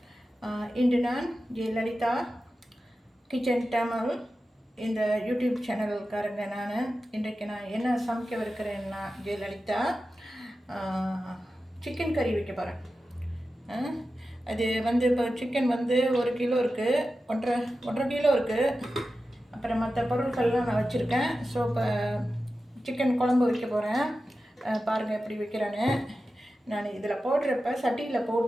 இன்று நான் ஜெயலலிதா கிச்சன் தமிழ் இந்த யூடியூப் சேனலுக்காரங்க. இன்றைக்கு நான் என்ன சமைக்கவிருக்கிறேன்னா, ஜெயலலிதா சிக்கன் கறி வைக்க போகிறேன். அது இப்போ சிக்கன் 1 கிலோ இருக்குது, 1.5 கிலோ இருக்குது. அப்புறம் மற்ற பொருட்கள்லாம் நான் வச்சுருக்கேன். ஸோ இப்போ சிக்கன் குழம்பு வைக்க போகிறேன். பாருங்கள் எப்படி வைக்கிறேன்னு. நான் இதில் போடுறப்ப சட்டியில்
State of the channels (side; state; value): both; normal; correlation 0.93